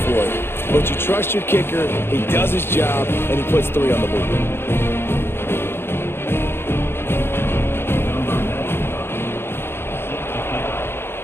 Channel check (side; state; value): right; late; 0.11 ms